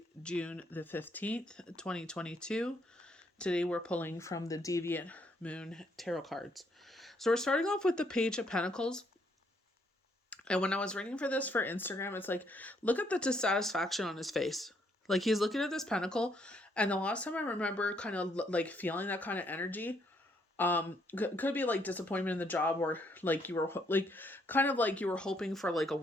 June the 15th, 2022. Today we're pulling from the Deviant Moon tarot cards. So we're starting off with the Page of Pentacles. And when I was reading for this for Instagram, it's like, look at the dissatisfaction on his face. Like he's looking at this pentacle, and the last time I remember kind of like feeling that kind of energy, could be like disappointment in the job, or like you were like kind of like you were hoping for like a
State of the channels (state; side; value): normal; both; correlation 0.71